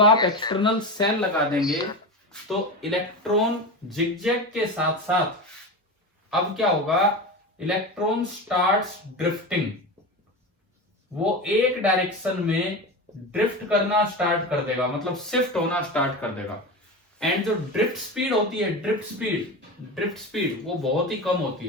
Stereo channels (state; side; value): normal; both; correlation 0.24